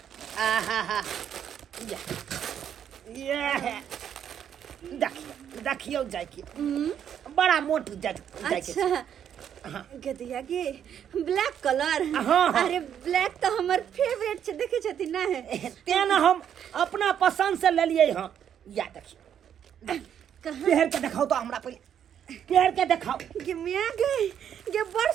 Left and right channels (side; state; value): left; quieter; 9.1 dB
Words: आहा ये देखियो जैकेट बड़ा मोट जैकेट अच्छा गदिया गे ब्लैक कलर हाँ। अरे ब्लैक तो हमर फेवरेट छै देखे छथि ना तेना हम अपना पसंद से ले लिए हाँ या देखिए पहन के दिखाओ तो हमरा पहले पहन के दिखाओ गे मिया गे बड़